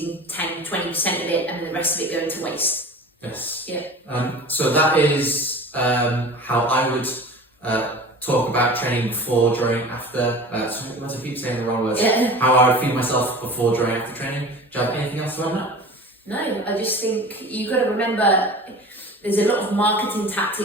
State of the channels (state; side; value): normal; both; correlation 0.38